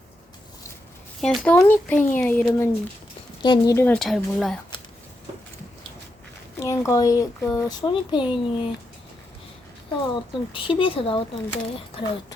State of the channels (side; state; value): both; normal; correlation 0.84